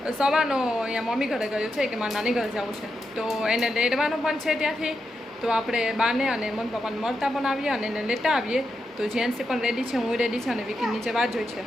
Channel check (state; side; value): normal; both; correlation 0.86